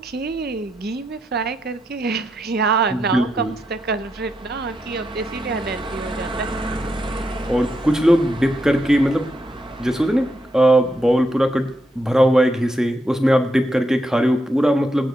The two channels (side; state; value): both; normal; correlation 0.82